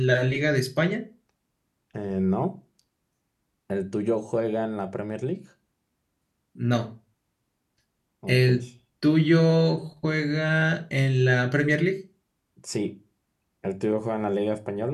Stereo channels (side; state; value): both; identical; correlation 1.00